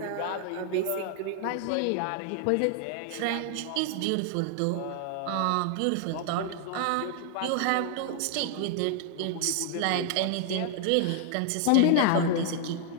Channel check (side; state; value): both; different; correlation 0.00